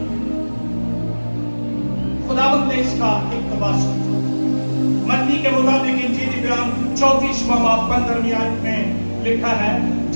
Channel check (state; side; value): inverted; both; correlation -1.00